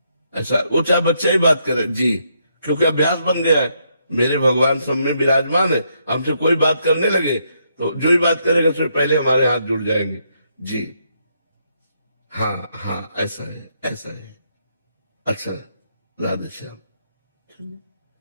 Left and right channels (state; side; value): inverted; both; correlation -0.76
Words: ऐसा वो चाहे बच्चा ही बात करे जी, क्योंकि अभ्यास बन गया है। मेरे भगवान सब में विराजमान है, हमसे कोई बात करने लगे तो जो ही बात करेगा उससे पहले हमारे हाथ जुड़ जाएंगे जी। हाँ हाँ, ऐसा है, ऐसा है। अच्छा, राधे श्याम।